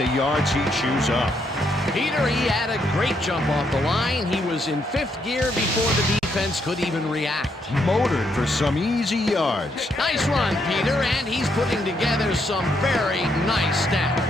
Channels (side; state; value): both; normal; correlation 0.76